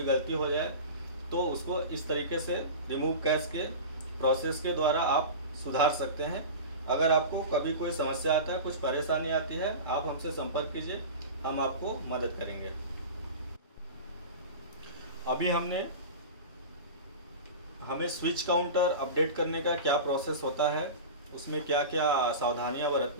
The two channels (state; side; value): inverted; both; correlation -0.30